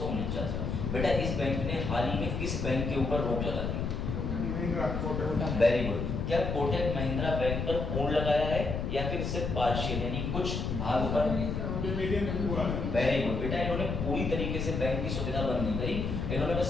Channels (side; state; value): left; noise; rumble, 2 dB below the sound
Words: में। बेटा इस बैंक ने हाल ही में किस बैंक के ऊपर रोक लगा दी? Very good. क्या कोटक महिंद्रा बैंक पर पूर्ण लगाया है या फिर सिर्फ पार्शियल यानी कुछ भाग पर? वेरी गुड बेटा, इन्होंने पूरी तरीके से बैंक की सुविधा बंद नहीं करी, इन्होंने